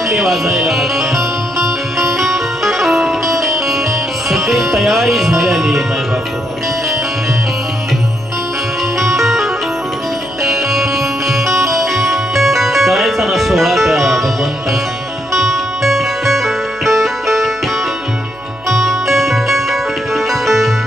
वाजायला लागल्या. सगळी तयारी झालेली माय बापू. करायचा ना सोहळा त्या भगवंताचा.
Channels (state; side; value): noise; right; hum, 24 dB below the sound